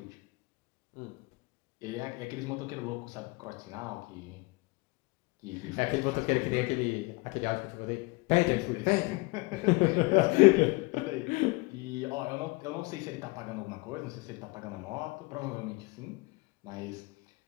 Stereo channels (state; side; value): quieter; right; 25.7 dB